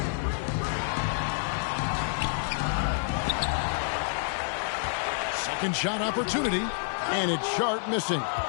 Second shot opportunity, and it's Sharp missing.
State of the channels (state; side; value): silent; right; 59 dB below the other